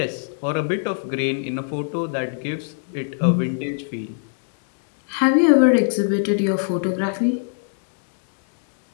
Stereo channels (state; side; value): silent; right; 64 dB below the other